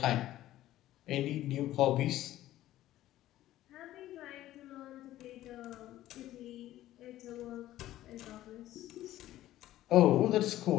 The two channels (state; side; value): quieter; right; 14.3 dB